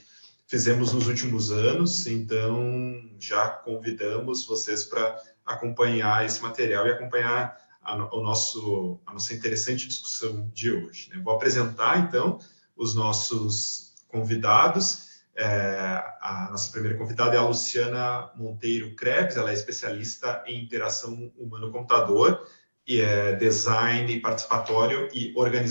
fizemos nos últimos anos, então já convidamos vocês para acompanhar esse material e acompanhar a nossa interessante discussão de hoje, né? Vou apresentar então os nossos convidados. A nossa primeira convidada é a Luciana Monteiro Krebs, ela é especialista em interação humano-computador e design participatório e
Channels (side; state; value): both; inverted; correlation -1.00